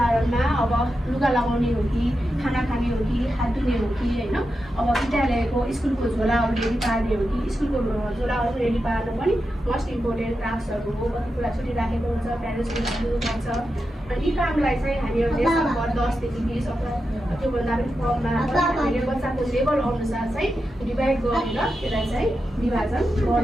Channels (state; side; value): normal; both; correlation 0.89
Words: अब लुगा लगाउने हो कि खाना खाने हो कि हात धुने हो कि होइन। अब विद्यालयको स्कुलको झोलाहरू रेडी पार्ने हो कि स्कुलको झोलाहरू रेडी पार्नु पनि मोस्ट इम्पोर्टेन्ट टास्कहरू हो। कति कुरा छुट्टी राखेको हुन्छ, प्यारेन्ट्सले दिनुपर्छ। अनि यी कामलाई चाहिँ हामीहरूले सम्भव 10 देखि 20 अथवा त्योभन्दा पनि कममा हामीले बच्चाको लेभल अनुसार चाहिँ डिभाइड गरेर त्यसलाई चाहिँ विभाजन